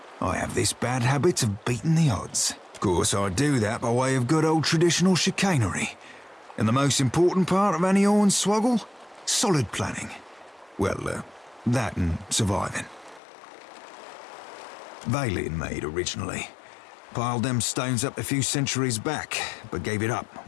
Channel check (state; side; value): drops out; right; at 13.2 s